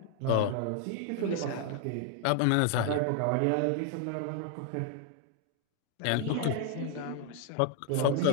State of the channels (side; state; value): both; different; correlation 0.00